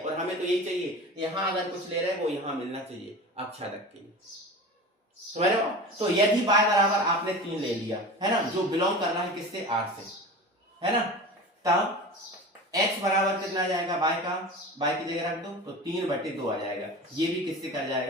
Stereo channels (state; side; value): normal; both; correlation 0.33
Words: और हमें तो यही चाहिए, यहाँ अगर कुछ ले रहे हैं वो यहाँ मिलना चाहिए आच्छादक के लिए, समझ रहे हो। तो यदि y बराबर आपने 3 ले लिया, है ना, जो बिलोंग कर रहा है किससे, r से, है ना, तब x बराबर कितना आ जाएगा, y की जगह रख दो तो 3/2 आ जाएगा, ये भी किससे कर